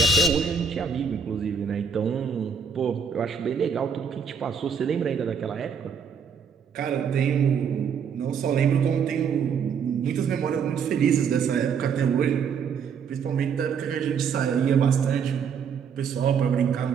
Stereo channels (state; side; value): quieter; left; 6.4 dB